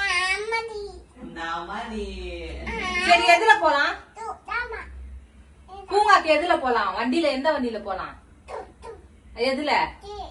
சரி எதுல போலாம்? பூங்காக்கு எதுல போலாம்? வண்டியில எந்த வண்டியில போலாம்? எதுல?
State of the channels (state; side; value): identical; both; correlation 1.00